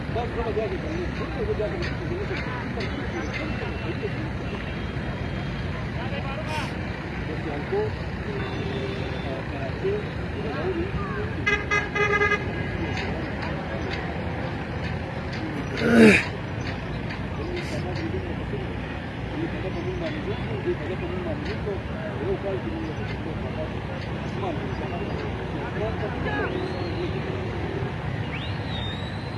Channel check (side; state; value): both; identical; correlation 1.00